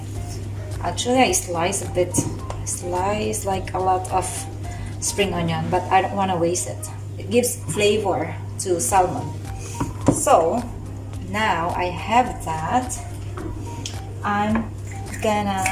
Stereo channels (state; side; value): identical; both; correlation 1.00